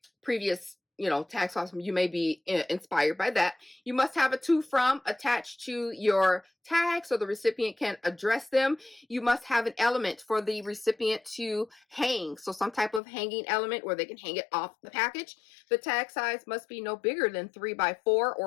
previous, you know, tag sauce. You may be inspired by that. You must have a to from attached to your tag so the recipient can address them. You must have an element for the recipient to hang. So some type of hanging element where they can hang it off the package. The tag size must be no bigger than 3 by 4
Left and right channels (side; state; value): right; drops out; at 13.0 s